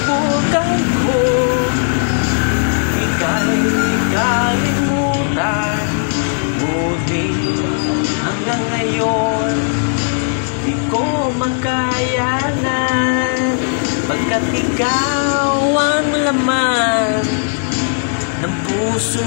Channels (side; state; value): right; silent; 69 dB below the other